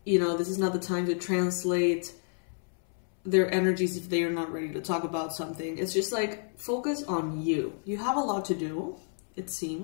You know, this is not the time to translate their energies if they are not ready to talk about something. It's just like, focus on you. You have a lot to do, it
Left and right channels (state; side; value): silent; right; 58 dB below the other